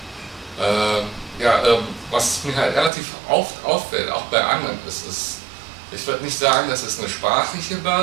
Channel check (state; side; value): drops out; left; at 2.9 s